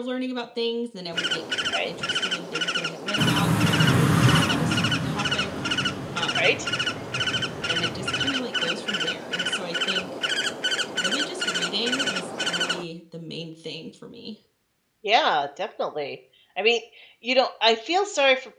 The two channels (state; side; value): identical; both; correlation 1.00